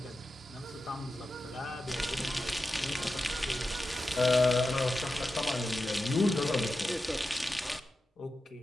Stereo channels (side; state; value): both; normal; correlation 0.91